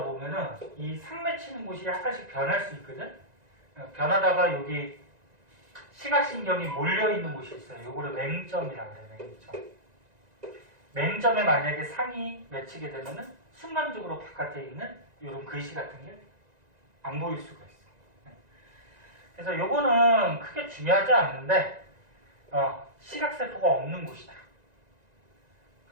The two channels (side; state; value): left; late; 1.9 ms